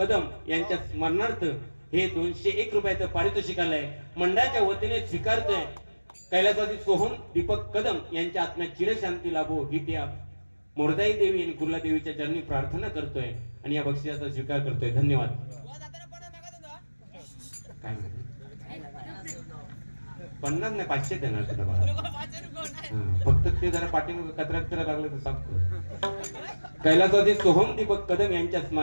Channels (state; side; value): inverted; both; correlation -1.00